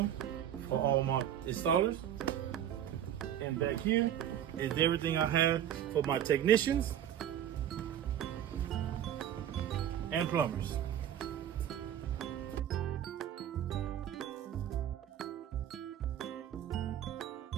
for all my installers. And back here is everything I have for my technicians and plumbers.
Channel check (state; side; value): quieter; left; 10.5 dB